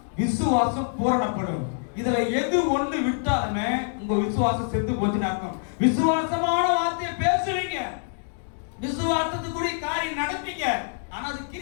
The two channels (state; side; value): silent; right; digital silence